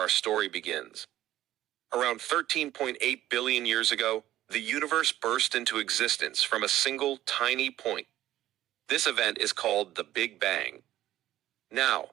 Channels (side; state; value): left; quieter; 13.8 dB